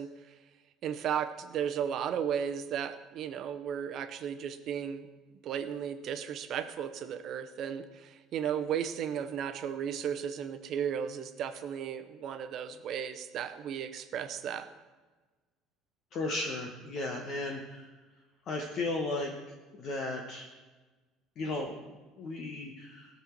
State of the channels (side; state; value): left; quieter; 4.6 dB